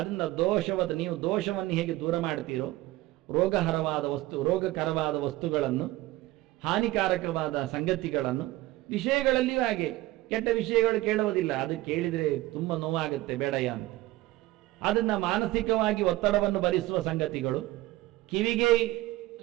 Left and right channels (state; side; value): quieter; left; 17.8 dB